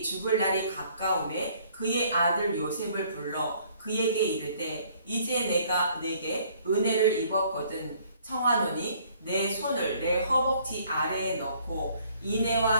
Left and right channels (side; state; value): both; inverted; correlation -0.60